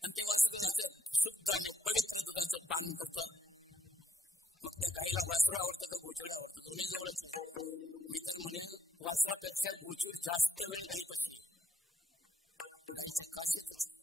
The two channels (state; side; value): normal; both; correlation 0.75